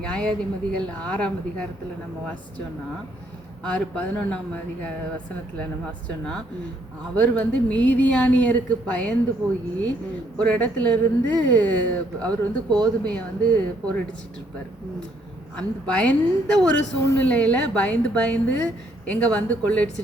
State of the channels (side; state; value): both; normal; correlation 0.69